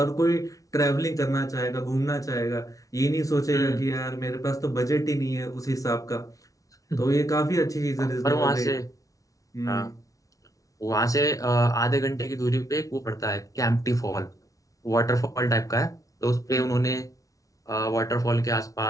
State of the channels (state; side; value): late; right; 0.17 ms